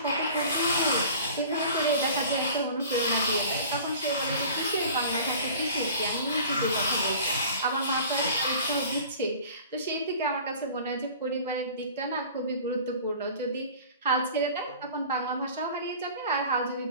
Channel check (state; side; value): inverted; both; correlation -0.43